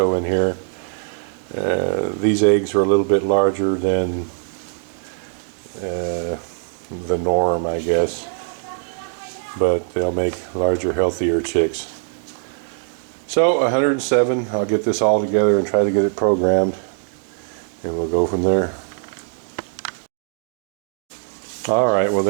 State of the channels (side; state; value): left; silent; digital silence